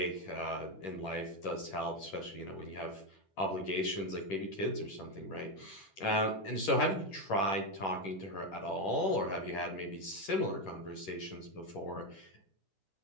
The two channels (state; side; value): late; right; 10 ms